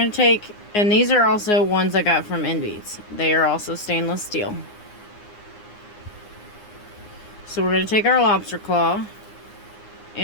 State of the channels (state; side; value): late; right; 9.6 ms